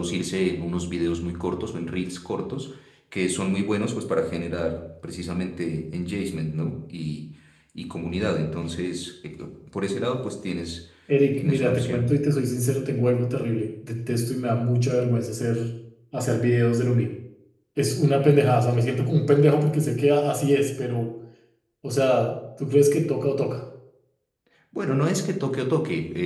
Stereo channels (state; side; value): identical; both; correlation 1.00